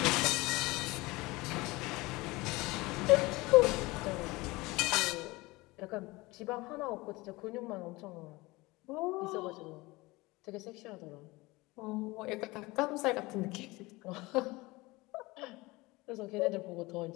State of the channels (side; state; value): right; quieter; 22.1 dB